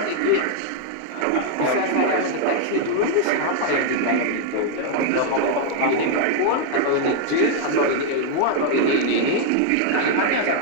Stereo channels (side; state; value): both; different; correlation 0.00